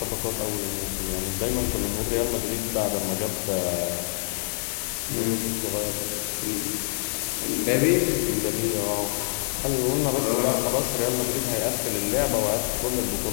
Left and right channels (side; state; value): right; silent; digital silence